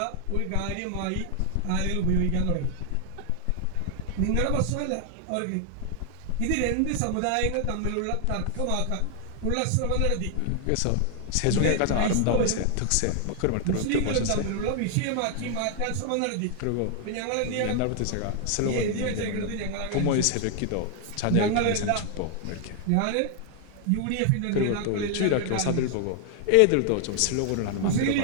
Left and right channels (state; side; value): different; both; correlation 0.00